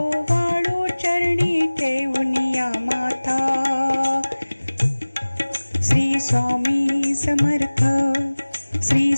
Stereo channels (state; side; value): inverted; both; correlation -1.00